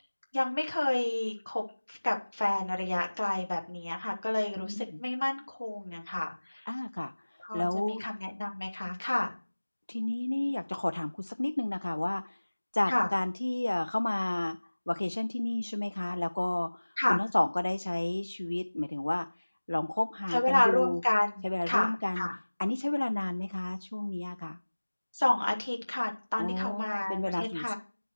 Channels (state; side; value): inverted; both; correlation -1.00